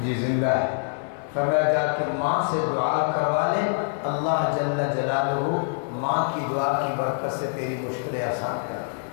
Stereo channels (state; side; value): silent; right; digital silence